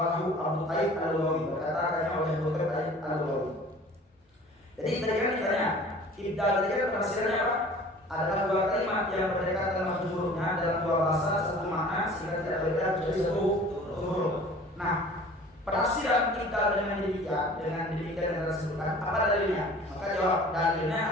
Abu Taib al-Lughawi berkata oleh Abu Taib al-Lughawi. Jadi tadi kan ditanya, ibdal tadi kan penafsirannya apa? Adalah dua kalimat yang berdekatan lafaz hurufnya dalam dua bahasa satu makna sehingga tidak berbeda menjadi satu huruf. Nah, penafsiran kita dengan demikian yang disebutkan apa dalilnya? Maka jawab dalilnya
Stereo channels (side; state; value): both; normal; correlation 0.46